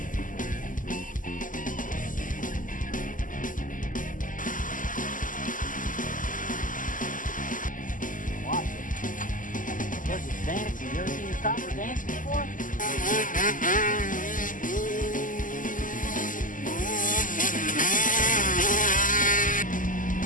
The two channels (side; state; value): right; late; 0.38 ms